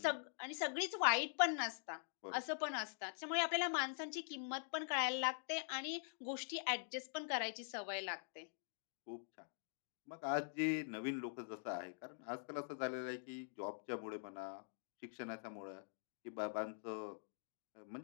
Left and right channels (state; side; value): silent; right; digital silence